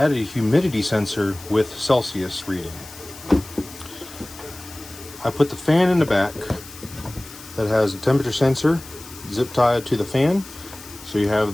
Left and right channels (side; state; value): left; noise; hiss, 17 dB below the sound